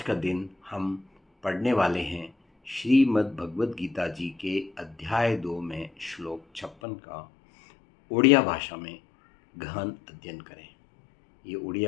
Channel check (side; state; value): right; drops out; at 6.8 s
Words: का दिन हम पढ़ने वाले हैं श्रीमद् भगवद गीता जी के अध्याय 2 में श्लोक 56 का ओडिया भाषा में गहन अध्ययन करें। ये